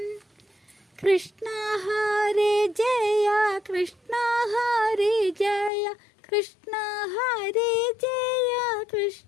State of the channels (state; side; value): drops out; right; at 5.7 s